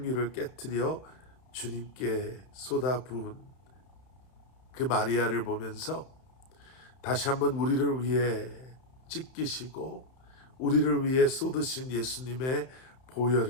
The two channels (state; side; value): late; right; 31 ms